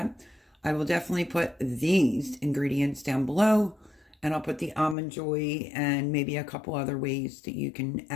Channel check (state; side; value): drops out; right; at 5.0 s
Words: I will definitely put these ingredients down below, and I'll put the almond joy and maybe a couple other ways that you can